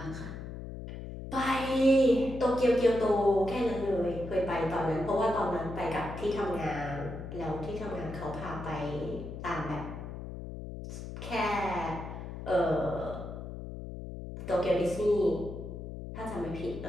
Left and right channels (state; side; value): noise; left; hum, 9 dB below the sound